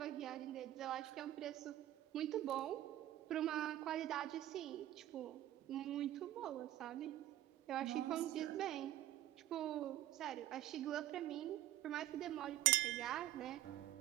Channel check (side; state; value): left; quieter; 13.7 dB